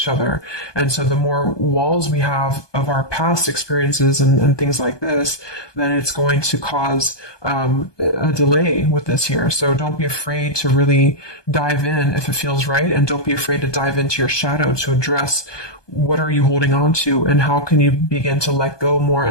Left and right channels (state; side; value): late; right; 1.2 ms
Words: other. And so the more walls we have of our past experiences and things like this, then it's going to cause a delay with this here. So don't be afraid to really dive in if it feels right. And don't be afraid to dive into your shadow to address what are you holding on to and how can you begin to let go more